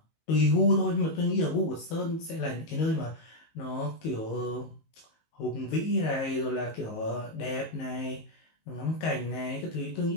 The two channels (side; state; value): right; late; 19 ms